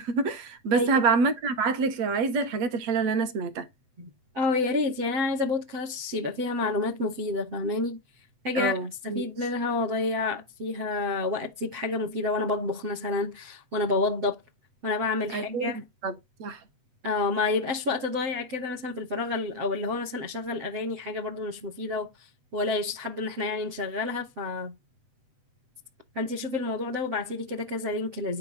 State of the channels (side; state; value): left; late; 8.0 ms